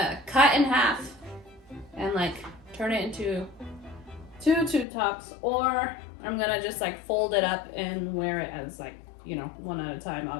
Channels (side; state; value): right; drops out; at 4.9 s